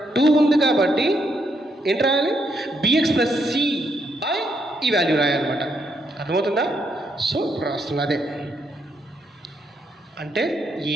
2 ఉంది కాబట్టి ఏంటి రాయాలి? bx ప్లస్ c బై ఈ వాల్యూ రాయాలన్నమాట. అర్థమవుతుందా? సో రాస్తున్నా అదే అంటే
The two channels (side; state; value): both; normal; correlation 0.76